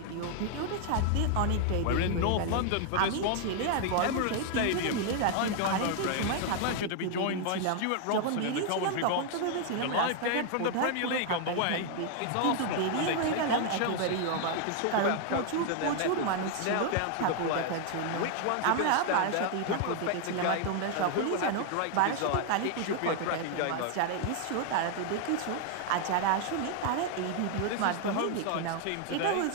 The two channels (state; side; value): different; both; correlation 0.00